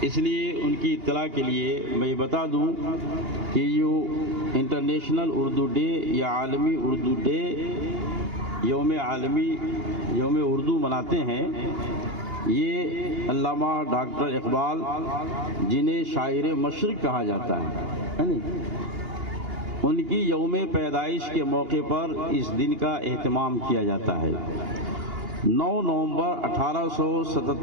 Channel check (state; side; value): late; left; 2.8 ms